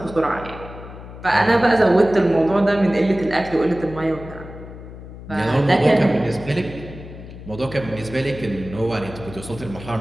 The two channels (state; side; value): noise; left; hum, 14 dB below the sound